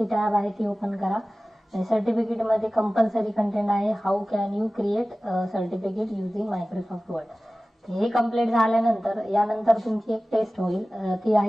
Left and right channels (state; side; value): normal; both; correlation 0.97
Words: टॅब आहे ती ओपन करा. आणि सर्टिफिकेट मध्ये कंपल्सरी कंटेंट आहे how can you create certificate using Microsoft word. हे कंप्लीट झाल्यानंतर यानंतर तुमची एक टेस्ट होईल, ती